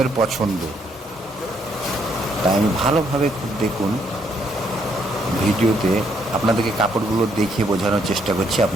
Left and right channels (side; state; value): both; normal; correlation 0.72